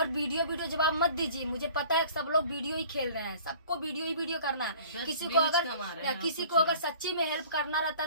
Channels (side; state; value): both; inverted; correlation -0.47